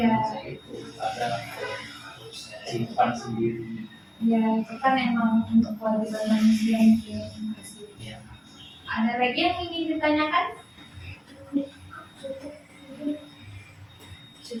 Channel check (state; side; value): identical; both; correlation 1.00